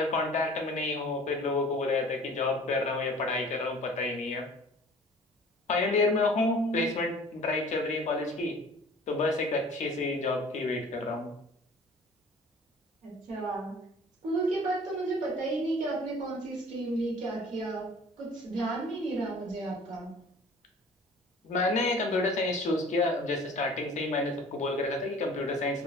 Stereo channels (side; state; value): both; normal; correlation 0.47